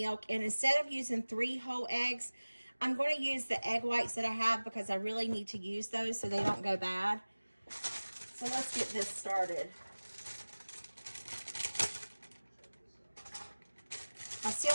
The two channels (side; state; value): both; inverted; correlation -1.00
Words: And instead of using 3 whole eggs, I'm going to use the egg whites that I have because I really need to use those so they don't go bad. So let's get this started. I still